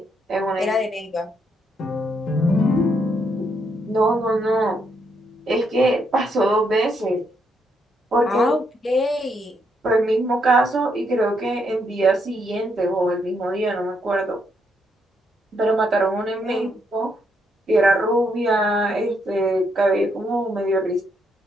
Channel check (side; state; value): both; normal; correlation 0.76